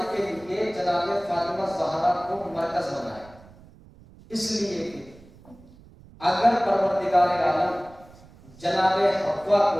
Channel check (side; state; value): right; noise; rumble, 23 dB below the sound